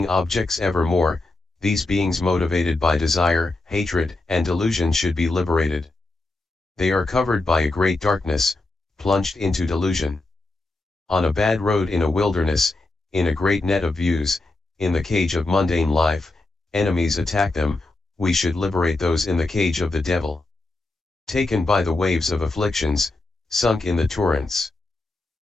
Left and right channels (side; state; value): right; quieter; 3.0 dB